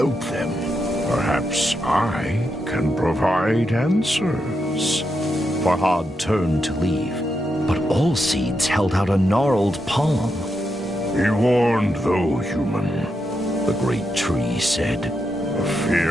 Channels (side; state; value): both; normal; correlation 0.84